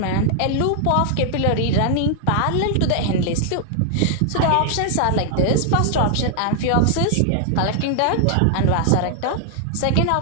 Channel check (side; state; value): both; different; correlation 0.00